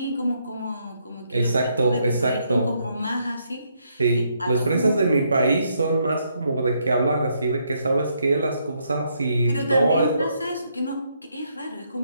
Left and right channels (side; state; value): both; inverted; correlation -0.74